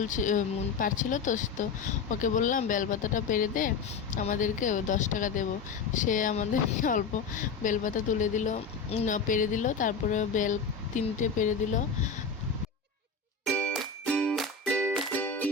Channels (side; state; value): right; quieter; 5.2 dB